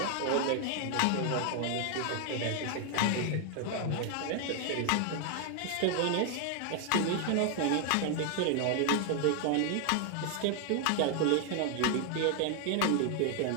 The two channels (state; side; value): different; both; correlation 0.00